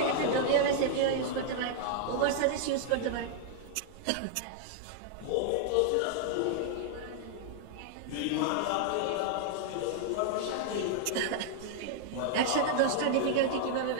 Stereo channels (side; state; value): both; different; correlation -0.01